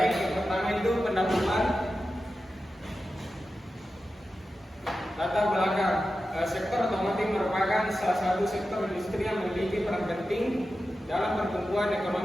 yang pertama itu pendahuluan. Latar belakang, sektor otomotif merupakan salah satu sektor industri yang memiliki peran penting dalam pertumbuhan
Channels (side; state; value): both; normal; correlation 0.92